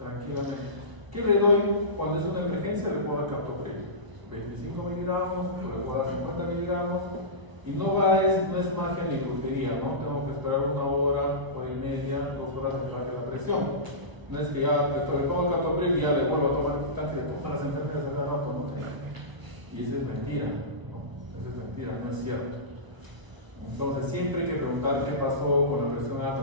¿Qué le doy cuando es una emergencia? Le puedo dar captopril. 25 miligramos, o le puedo dar 50 miligramos. Y no es magia ni brujería, ¿no? Tengo que esperar 1 hora, hora y media, 2 horas para que la presión. No es que ya le tomo captopril y ya le vuelvo a tomar el tanque de comer las enfermeras a cada rato, ¿no? Y esa es mentira, ¿no? Esa es mentira, no es cierto. Entonces siempre hay que preguntar qué pasó con la presión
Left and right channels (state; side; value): late; left; 1.1 ms